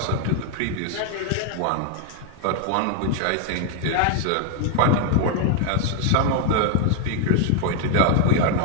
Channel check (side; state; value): both; different; correlation 0.00